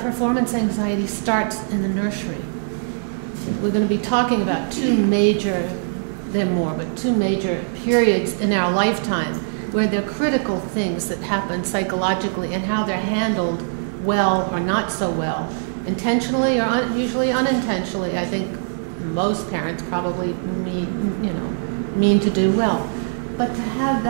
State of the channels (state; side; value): silent; left; digital silence